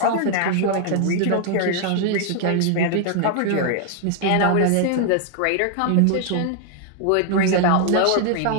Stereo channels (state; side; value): different; both; correlation 0.00